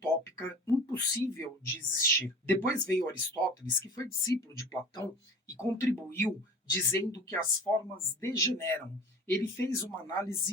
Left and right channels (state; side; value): normal; both; correlation 0.40